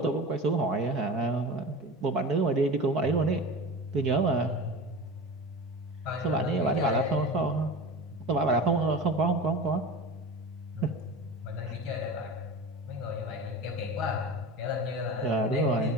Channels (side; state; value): both; normal; correlation 0.32